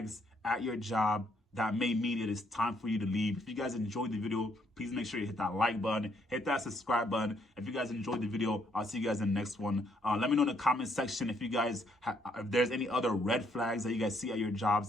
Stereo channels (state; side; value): normal; both; correlation 0.71